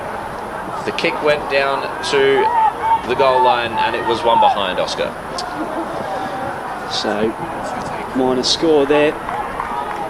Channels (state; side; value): identical; both; correlation 1.00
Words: The kick went down to the goal line, and it was one behind, Oscar. So, minor score there.